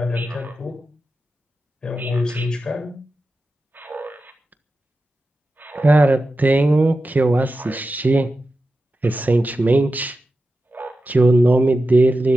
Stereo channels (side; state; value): both; normal; correlation 0.92